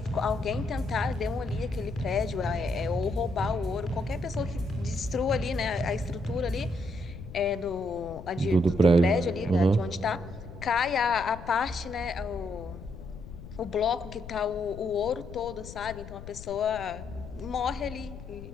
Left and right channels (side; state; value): left; noise; rumble, 13 dB below the sound